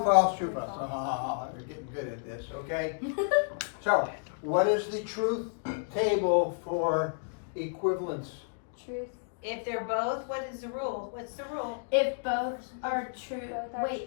false, true, false. Ah, they're getting good at this, okay? So, what is the truth table for equivalence? Truth. If they're both, what is the rule? What's the rule? If both are true, Both are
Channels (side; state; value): right; silent; digital silence